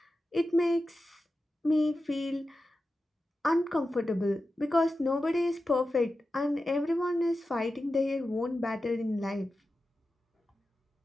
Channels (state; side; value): normal; both; correlation 0.92